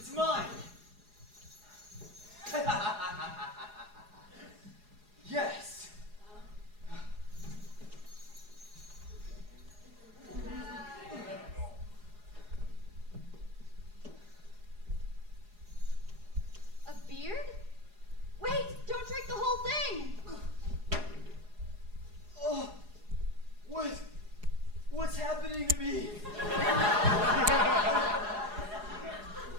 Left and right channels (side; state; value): left; late; 4.8 ms